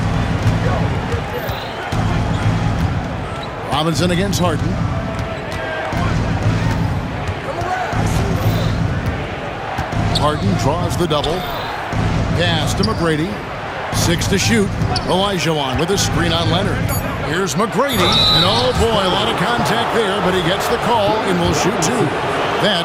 Robinson against Harden. Harden draws the double. Pass to McGrady. 6 to shoot. Olajuwon with a screen on Leonard. Here's McGrady. And oh boy, a lot of contact there, but he gets the call and will shoot 2.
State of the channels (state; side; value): identical; both; correlation 1.00